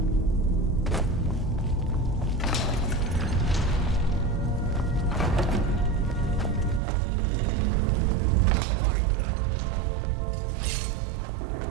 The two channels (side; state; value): left; drops out; at 6.8 s